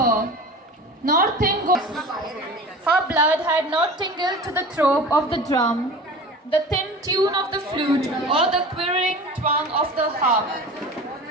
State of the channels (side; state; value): both; normal; correlation 0.37